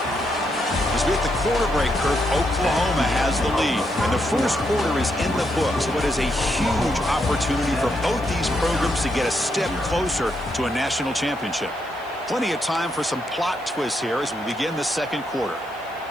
As we hit the quarter break, Kirk, Oklahoma has the lead. And the first quarter is in the books. What is a huge opportunity for both these programs to get a step closer to a national championship. Plenty of time for some plot twists here as we begin the second quarter.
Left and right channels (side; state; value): right; noise; hiss, 27 dB below the sound